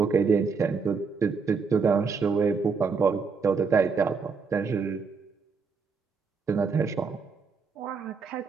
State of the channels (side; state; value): left; quieter; 5.1 dB